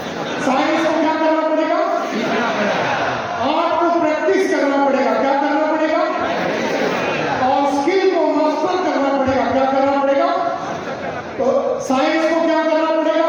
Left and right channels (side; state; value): both; identical; correlation 1.00